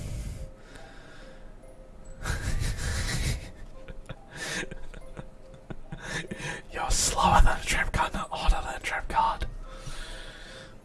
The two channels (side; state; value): both; identical; correlation 1.00